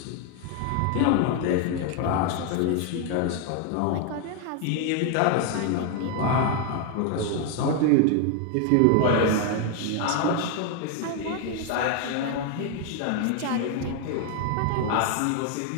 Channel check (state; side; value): different; both; correlation 0.01